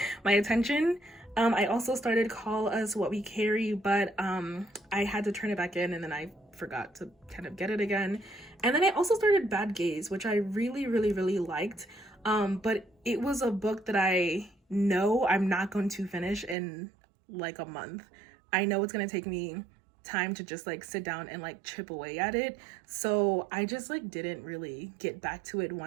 my attention. I also started Call Us What We Carry, but I had to turn it back in and then I forgot to kind of get it again. And then I also started Bad Gaze, which I really liked. But it was a book that I know I'm not going to finish in like a month. I know it's gonna take me time to just like sit down and like chip away at it. So I just like didn't really get back to it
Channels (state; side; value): drops out; left; at 16.6 s